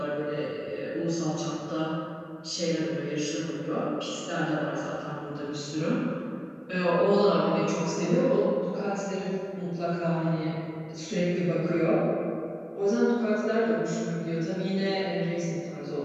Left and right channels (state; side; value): identical; both; correlation 1.00